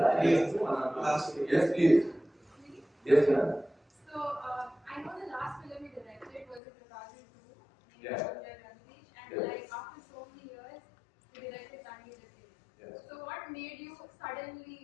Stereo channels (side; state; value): right; drops out; at 6.6 s